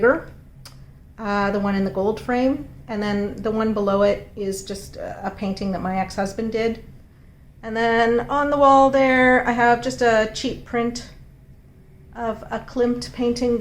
The one in the gold frame. And then the one below it is just a painting that my ex-husband did. And then on the wall there, I have just a cheap print of a Klimt painting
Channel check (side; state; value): both; identical; correlation 1.00